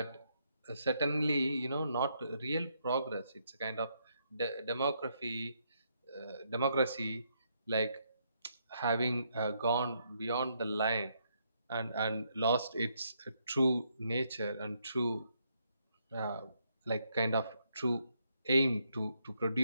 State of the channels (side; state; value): both; inverted; correlation -0.76